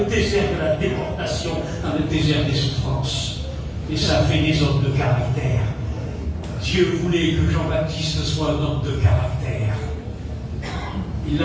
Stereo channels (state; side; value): identical; both; correlation 1.00